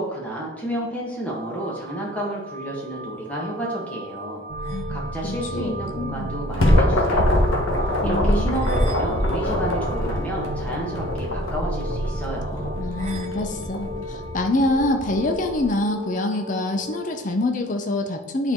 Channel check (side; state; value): both; normal; correlation 0.54